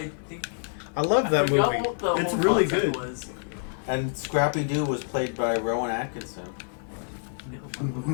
think I love that forgot movie. what the It's whole really concept good. Was. And Scrappy-Doo was played by Rowan Atkinson.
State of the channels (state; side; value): silent; right; 58 dB below the other